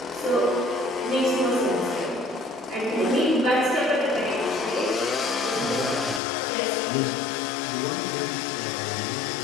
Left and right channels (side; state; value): right; drops out; at 6.2 s